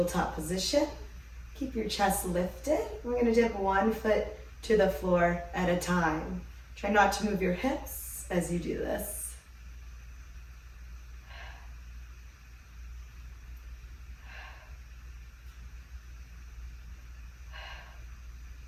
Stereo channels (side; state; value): both; identical; correlation 1.00